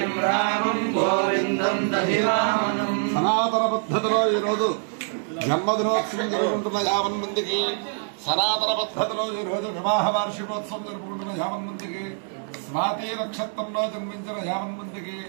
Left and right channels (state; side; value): silent; left; 62 dB below the other